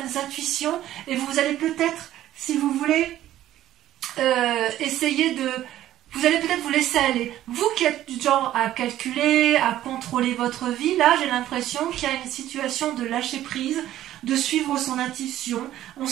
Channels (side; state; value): left; quieter; 13.2 dB